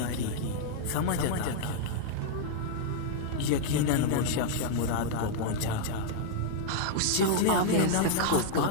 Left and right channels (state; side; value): different; both; correlation -0.01